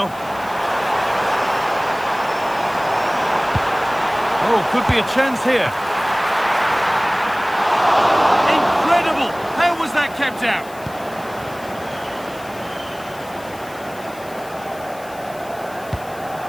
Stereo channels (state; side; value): noise; left; hiss, 21 dB below the sound